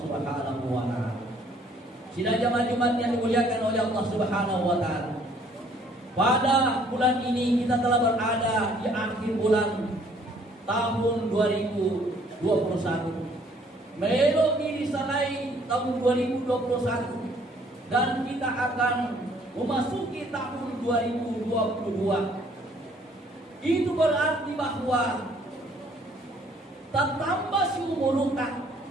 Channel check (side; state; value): both; normal; correlation 0.61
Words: wa Ta'ala. Sidang jamaah Jumat yang dimuliakan oleh Allah Subhanahu wa Ta'ala. Pada bulan ini kita telah berada di akhir bulan tahun 2021. Melok diri salai tahun 2021 dan kita akan memasuki tahun 2022. Itu berarti bahwa tak tambah si